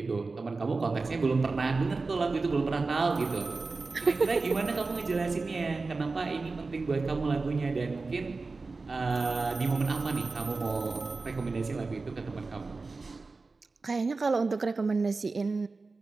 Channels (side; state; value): left; quieter; 3.9 dB